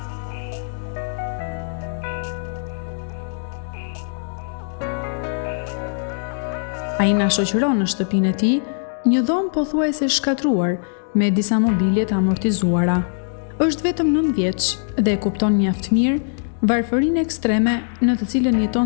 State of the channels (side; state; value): right; silent; digital silence